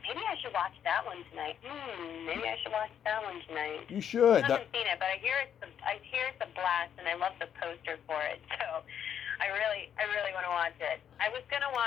Maybe I should watch that one tonight. Maybe I should watch that one tonight. You should. I haven't seen it, but I hear it's a blast, and I love the poster for it. So I really want to watch it. I was gonna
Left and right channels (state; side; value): quieter; right; 8.9 dB